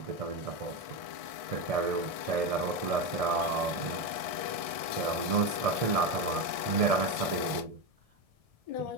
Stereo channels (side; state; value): left; late; 1.6 ms